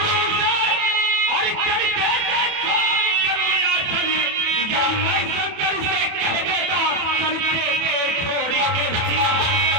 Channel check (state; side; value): late; left; 28 ms